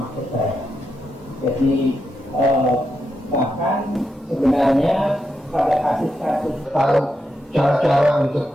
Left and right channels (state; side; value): normal; both; correlation 0.84